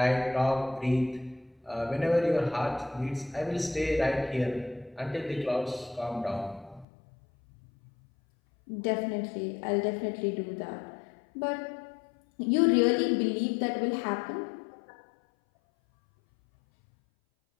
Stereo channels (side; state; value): right; drops out; at 6.9 s